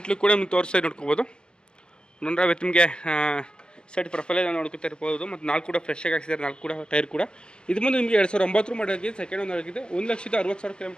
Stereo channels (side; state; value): right; late; 0.050 ms